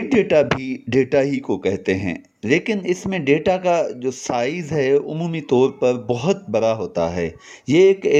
data भी data ही को कहते हैं, लेकिन इसमें data का जो size है उमूमी तौर पर बहुत बड़ा होता है। ये एक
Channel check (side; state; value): both; identical; correlation 1.00